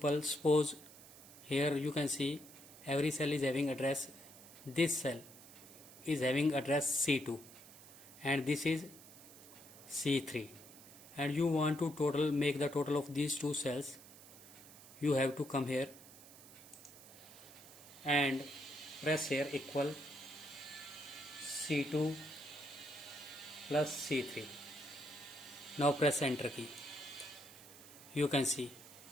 suppose here you can see every cell is having address. This cell is having address C2 and this is C3, and you want to make the total of these two cells. You have to come here and press here equal C2 plus C3. Now press enter key. You can see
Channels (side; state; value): right; noise; hiss, 18 dB below the sound